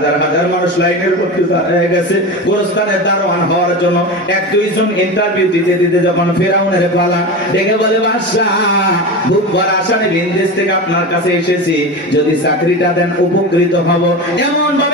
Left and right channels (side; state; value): both; normal; correlation 0.25